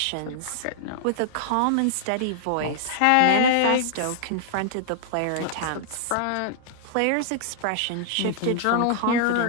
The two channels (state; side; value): different; both; correlation -0.01